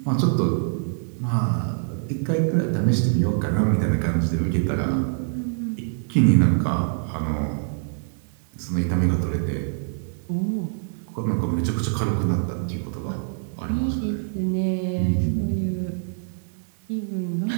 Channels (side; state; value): left; silent; digital silence